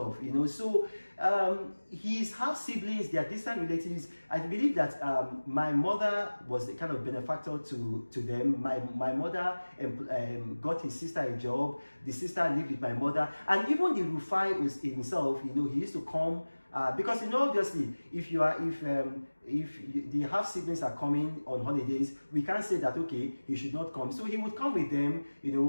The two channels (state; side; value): inverted; both; correlation -1.00